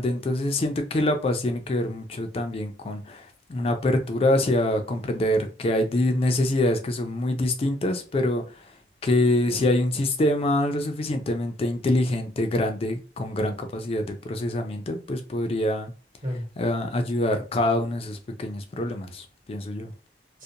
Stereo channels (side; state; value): both; normal; correlation 0.65